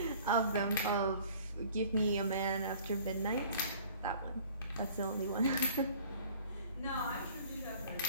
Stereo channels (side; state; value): both; inverted; correlation -0.51